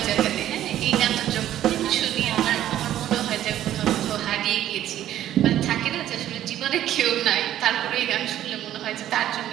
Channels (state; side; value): quieter; left; 12.2 dB